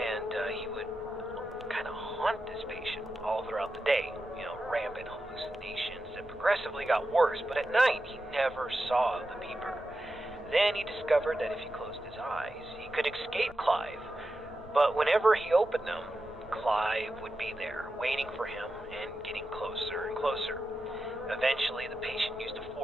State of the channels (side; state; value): both; normal; correlation 0.90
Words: he would kind of haunt this patient all throughout the day. Rampant hallucinations that progressively got worse, but at night he never saw the peeper. Then he discovered that if he closed his eyes, he could escape Clive, but whenever he opened them, Clive would be there, waiting for him and getting closer and closer. Eventually, the patient used a